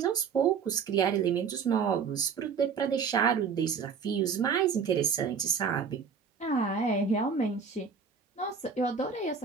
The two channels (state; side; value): quieter; left; 6.2 dB